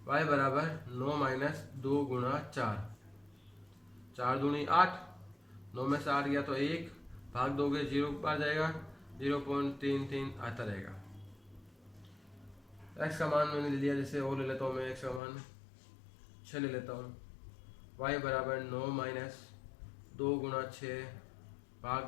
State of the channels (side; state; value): right; drops out; at 15.2 s